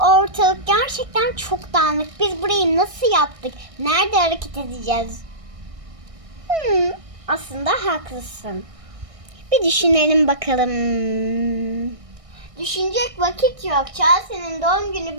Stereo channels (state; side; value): late; left; 1.6 ms